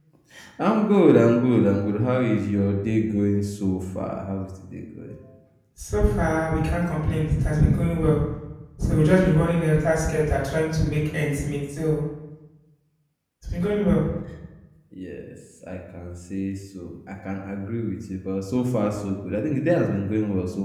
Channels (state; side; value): identical; both; correlation 1.00